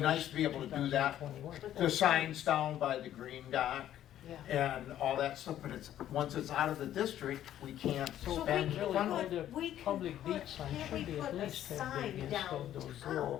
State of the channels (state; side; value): quieter; right; 11.8 dB